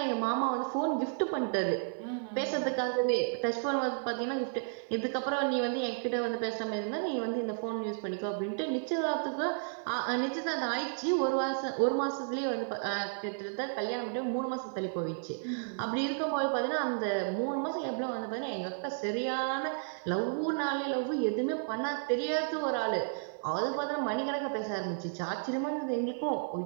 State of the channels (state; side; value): silent; left; digital silence